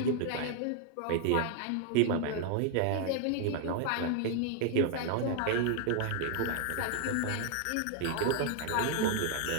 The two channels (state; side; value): different; both; correlation 0.00